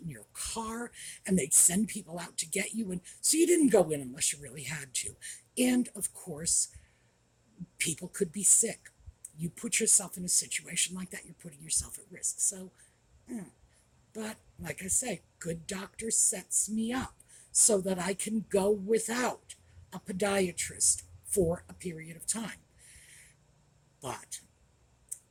in your car, and they'd send people out to get you, and so you didn't go in unless you really had to. And of course, people could be sick. You put yourself in a situation like that, you're putting yourself at risk. So, but like I say, good doctor sets me up so that I can go without a podiatrist for a period of time. But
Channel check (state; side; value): identical; both; correlation 1.00